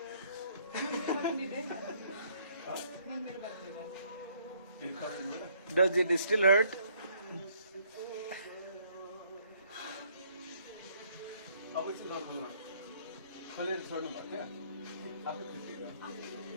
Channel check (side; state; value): both; inverted; correlation -0.65